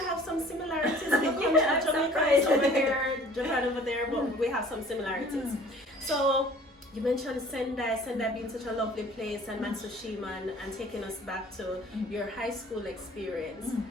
have some similarities. Yeah, I'm Jamaica is surprised. over here, Japan over there, but we have some similarities. So you mentioned Sendai being such a lovely place, and Matsushima, and taking us back to your high school experience.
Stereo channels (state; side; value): normal; both; correlation 0.50